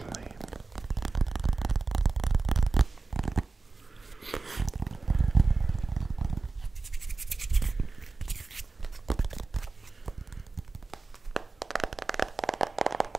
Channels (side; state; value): left; quieter; 3.7 dB